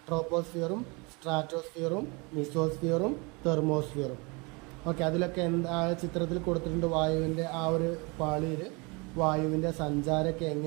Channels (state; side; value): quieter; left; 28.8 dB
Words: ട്രോപ്പോസ്ഫിയറും സ്ട്രാറ്റോസ്ഫിയറും മിസോസ്ഫിയറും തെർമോസ്ഫിയറും. ഓക്കെ, അതിലൊക്കെ എന്താ ചിത്രത്തിൽ കൊടുത്തിട്ടുണ്ട്, വായുവിൻ്റെ ആ ഒരു പാളിയിൽ വായുവിൻ്റെ സഞ്ചാരമൊക്കെ